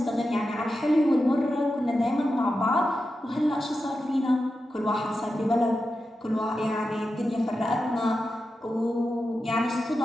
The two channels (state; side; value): normal; both; correlation 0.90